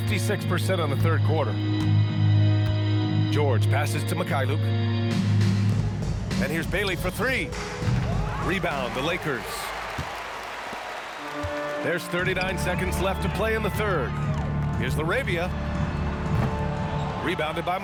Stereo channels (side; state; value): both; identical; correlation 1.00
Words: on the third quarter. George passes to Mikhailuk. And here's Bailey for 3. Rebound, the Lakers. There's 39 seconds left to play in the third. Here's Larabia. Rebounded by